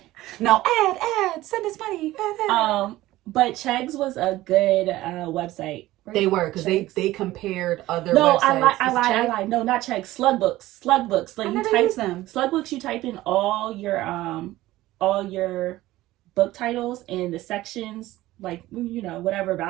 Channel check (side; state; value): left; quieter; 16.7 dB